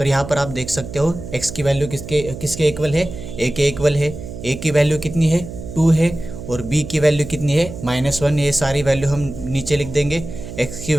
यहाँ पर आप देख सकते हो x की वैल्यू किसके इक्वल है, a के इक्वल है। a की वैल्यू कितनी है, 2 है, और b की वैल्यू कितनी है, -1। ये सारी वैल्यू हम नीचे लिख देंगे। x की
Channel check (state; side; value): noise; right; hum, 11 dB below the sound